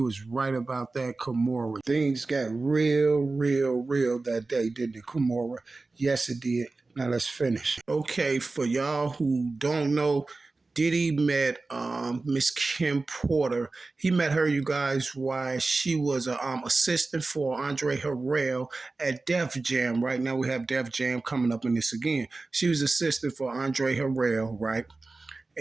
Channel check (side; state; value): left; quieter; 3.5 dB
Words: was right about that, Kimora. Things got real, real, real that day, didn't it, Kimora? Yes, it did. Now let's finish. Okay, for y'all who don't know, Diddy met Miss Kim Porter. He met her, you guys, while she was a assistant for Andre Harrell at Def Jam. Right now we have Def Jam coming up in this again. She was assistant for Andre Harrell, right?